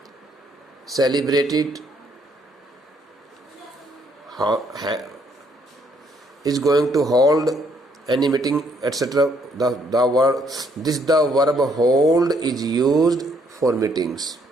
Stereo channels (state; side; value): normal; both; correlation 0.69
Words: celebrated, is going to hold any meeting, etc. The verb hold is used for meetings,